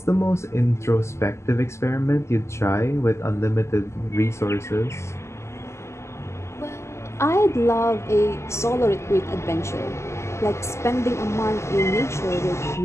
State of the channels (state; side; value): late; right; 0.13 ms